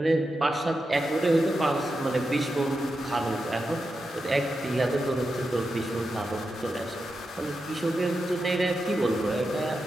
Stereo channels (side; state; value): both; normal; correlation 0.88